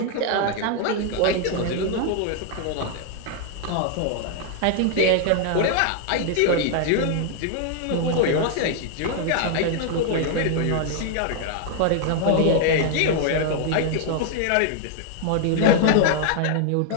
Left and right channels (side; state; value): both; different; correlation 0.00